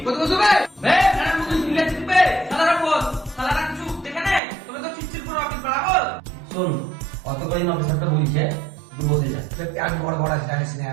কত কত বে খারাপ মতো দিলে দিবে সালারা বস সালারা কিছু দেখে নে তুমি তো চিচির পুরো অফিস বাড়াবো। শোন অত করে অফিসারটা বলছে তুই বসে যা পেট বড় বড় আছে জানিস না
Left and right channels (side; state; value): left; drops out; at 4.4 s